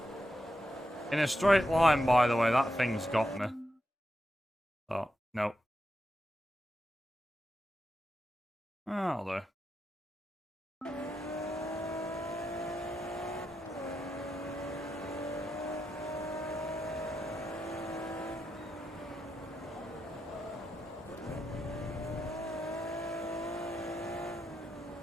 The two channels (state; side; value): normal; both; correlation 0.86